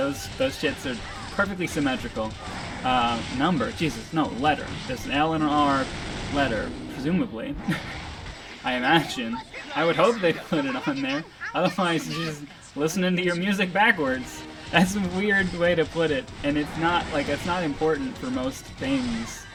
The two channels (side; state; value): both; identical; correlation 1.00